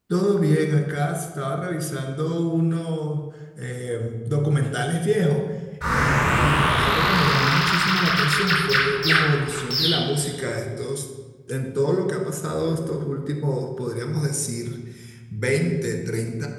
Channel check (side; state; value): both; identical; correlation 1.00